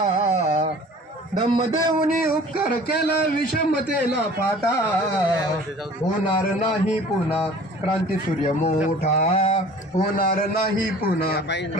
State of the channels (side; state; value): both; normal; correlation 0.47